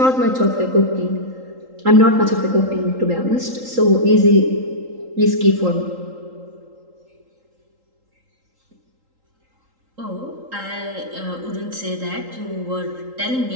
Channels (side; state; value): left; late; 3.8 ms